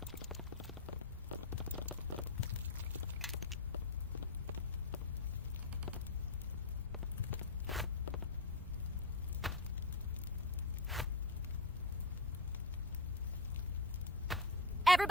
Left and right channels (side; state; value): both; normal; correlation 0.24